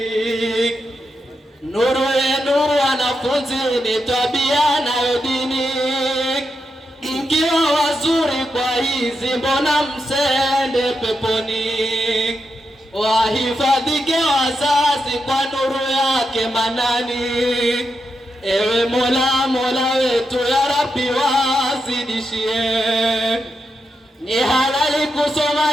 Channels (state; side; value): normal; both; correlation 0.85